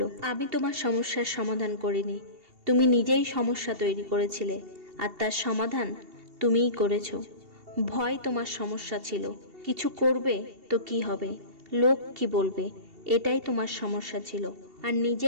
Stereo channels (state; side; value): late; left; 2.7 ms